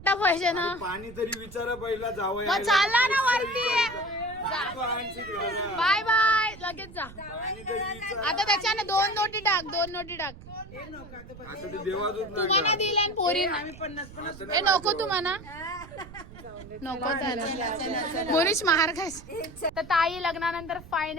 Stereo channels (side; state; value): right; noise; rumble, 17 dB below the sound